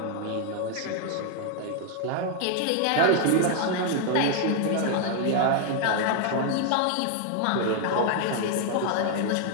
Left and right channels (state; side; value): different; both; correlation 0.00